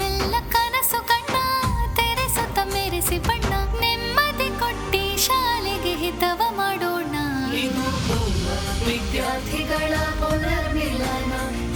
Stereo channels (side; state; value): both; identical; correlation 1.00